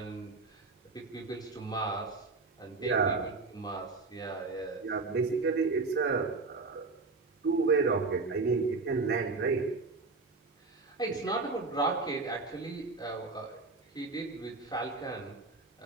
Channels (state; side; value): quieter; left; 3.9 dB